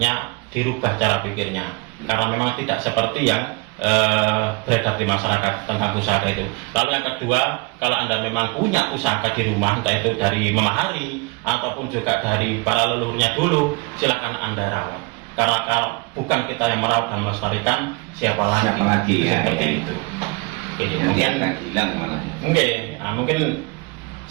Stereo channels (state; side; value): quieter; left; 25.8 dB